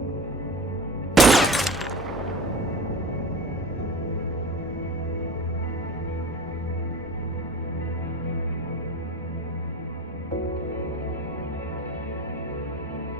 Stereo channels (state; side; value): normal; both; correlation 0.35